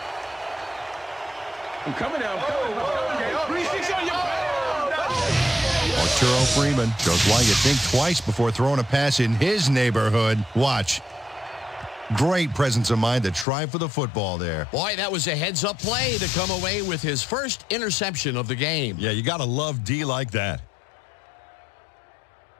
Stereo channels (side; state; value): right; drops out; at 13.5 s